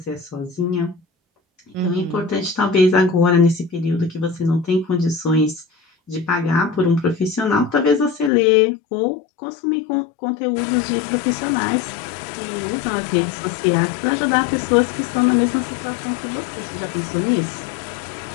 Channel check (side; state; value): right; drops out; at 8.3 s